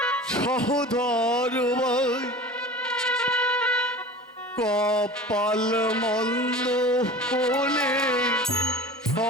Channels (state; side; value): normal; both; correlation 0.37